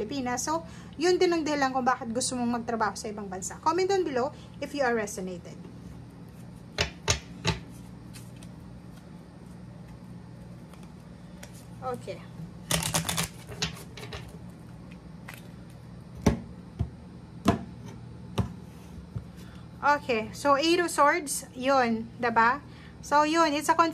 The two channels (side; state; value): both; identical; correlation 1.00